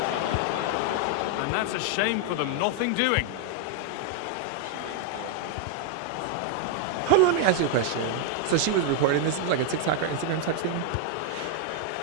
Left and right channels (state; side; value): different; both; correlation 0.00